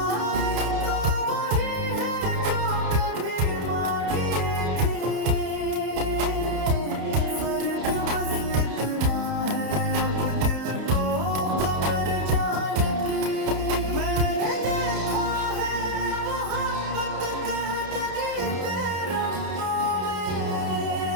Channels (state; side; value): late; left; 30 ms